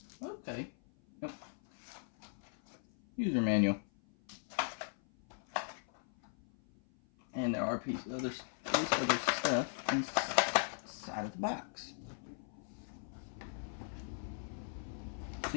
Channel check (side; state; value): right; silent; 52 dB below the other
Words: Okay. Yep. User manual. And there are pieces of other stuff inside of the box.